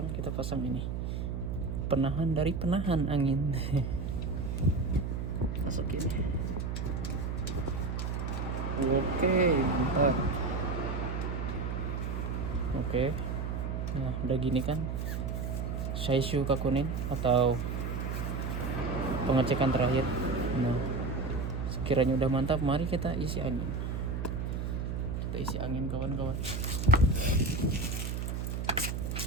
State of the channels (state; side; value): noise; right; hum, 2 dB below the sound